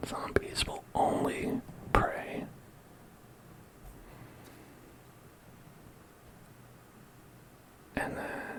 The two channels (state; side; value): identical; both; correlation 1.00